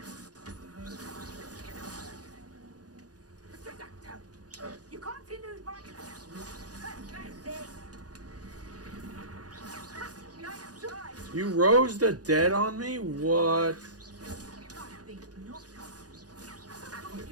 You continue my... You rose the dead on me? What?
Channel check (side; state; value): left; late; 0.68 ms